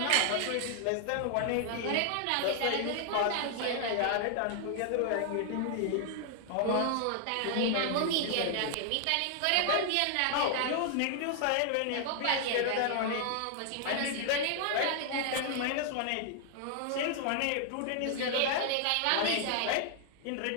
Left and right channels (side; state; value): both; different; correlation 0.00